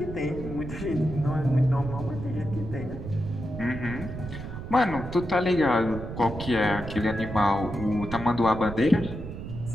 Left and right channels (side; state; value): right; noise; rumble, 9 dB below the sound